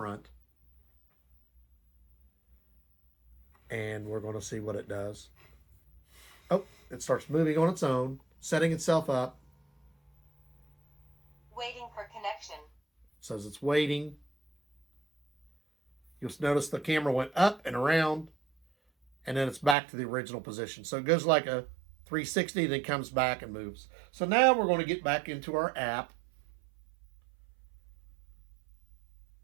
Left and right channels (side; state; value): left; drops out; at 19.8 s